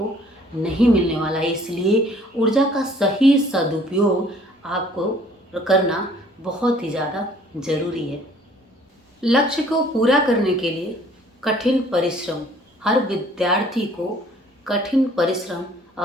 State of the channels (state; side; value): normal; both; correlation 0.57